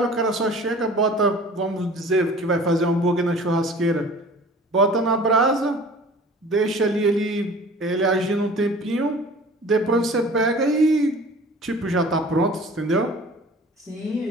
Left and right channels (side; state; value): both; normal; correlation 0.45